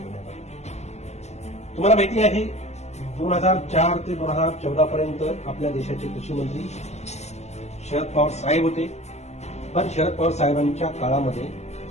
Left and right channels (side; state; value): right; late; 0.32 ms